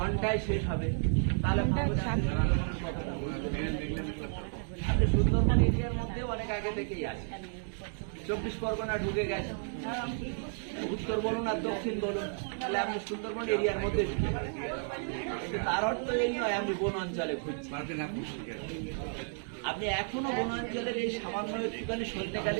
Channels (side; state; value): left; silent; 56 dB below the other